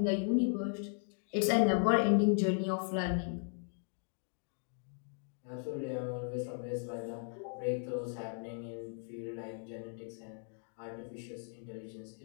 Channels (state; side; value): silent; right; 53 dB below the other